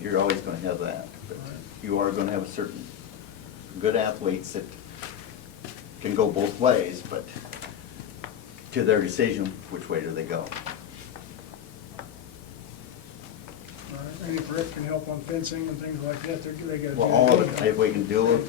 always gonna have that. But you are gonna have a certain good athletes that can go both ways, but to their decision, which way do they go? All right, and if Rick can help on fencing and things like that, they got to do. Well, all of it, if we can do it,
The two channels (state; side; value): quieter; right; 9.5 dB